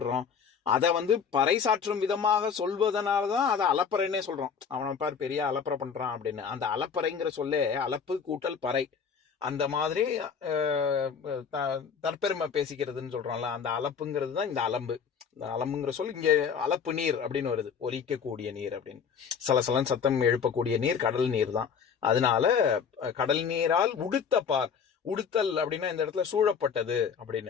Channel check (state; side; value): quieter; right; 6.6 dB